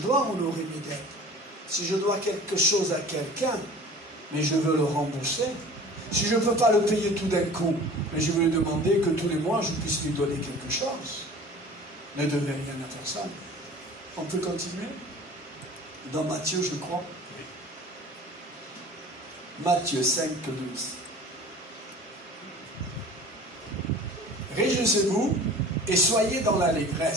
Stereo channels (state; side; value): normal; both; correlation 0.42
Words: honorer mes dettes. Si je dois quelque chose à quelqu'un, mais je veux le rembourser. Si je ne peux pas le payer tout d'un coup, mais je veux lui demander que tous les mois, je puisse lui donner quelque chose. Ne devez rien à personne. On peut continuer? Dans Matthieu, je crois. Matthieu 5, 12. Réjouissez-vous et soyez dans